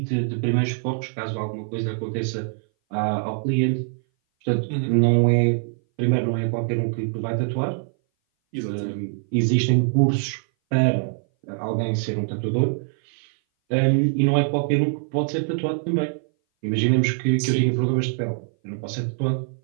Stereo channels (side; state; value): left; silent; 59 dB below the other